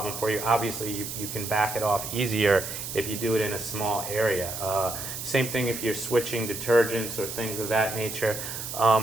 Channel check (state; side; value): noise; right; hiss, 7 dB below the sound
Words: for you, obviously you can back it off easier if you do it in a small area. Same thing if you're switching detergents or things of that nature.